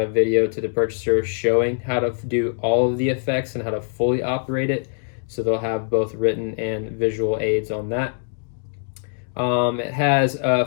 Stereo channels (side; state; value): right; silent; digital silence